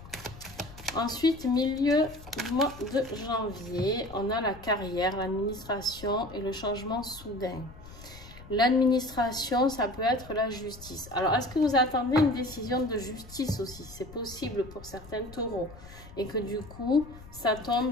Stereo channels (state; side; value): noise; left; rumble, 18 dB below the sound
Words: Ensuite, milieu du mois de janvier, on a la carrière, l'administration et le changement soudain. L'administration, ça peut être la justice. Alors, est-ce que vous attendez une décision de justice aussi? C'est possible pour certains taureaux. Et que du coup, ça